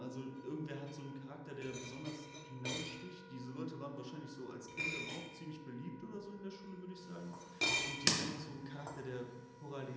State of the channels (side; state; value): both; identical; correlation 1.00